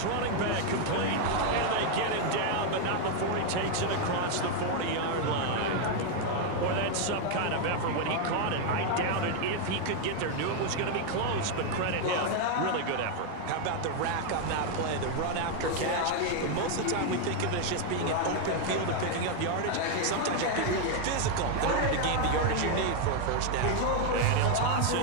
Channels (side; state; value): both; different; correlation 0.01